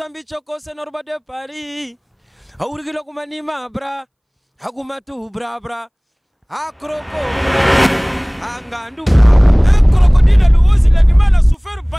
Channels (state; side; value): identical; both; correlation 1.00